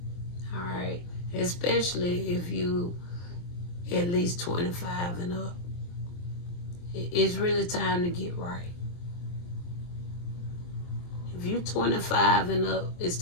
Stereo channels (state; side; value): late; right; 23 ms